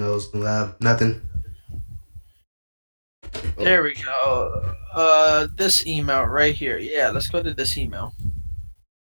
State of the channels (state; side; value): inverted; both; correlation -1.00